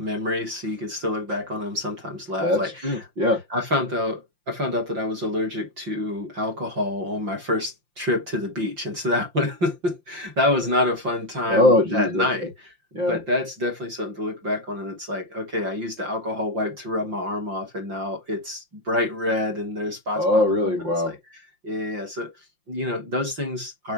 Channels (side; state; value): left; late; 5.7 ms